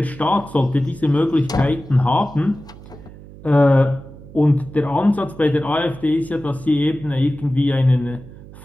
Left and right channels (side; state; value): right; noise; hum, 18 dB below the sound